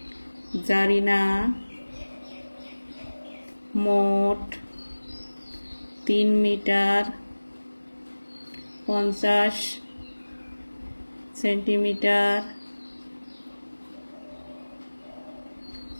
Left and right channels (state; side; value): inverted; both; correlation -1.00